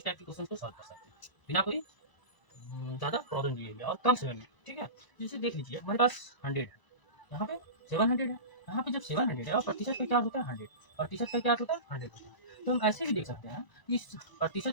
टाइप के क्वेश्चन को सॉल्व कर सकते हैं बिना कोई ज़्यादा प्रॉब्लम लिए हुए और कम समय में। ठीक है, जैसे देख लीजिए हमारे पास 100 है, यहाँ पे 700 है, यहाँ पे जब 700 है और प्रतिशत का क्या होता है 100, प्रतिशत का क्या होता है 100 होता है। तो हम ऐसे भी देख सकते हैं कि इस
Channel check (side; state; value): right; late; 1.0 ms